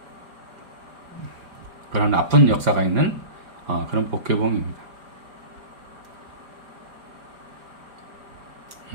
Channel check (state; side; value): late; left; 4.9 ms